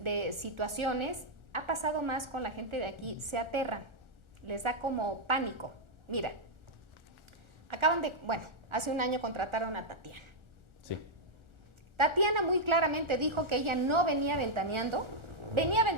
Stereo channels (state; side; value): late; left; 1.4 ms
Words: situaciones ha pasado más con la gente de aquí, se aterran, les da como pánico. Mira, hace un año contrataron a Tatiana. Sí. Tatiana muy claramente dijo que ella no venía ventaneando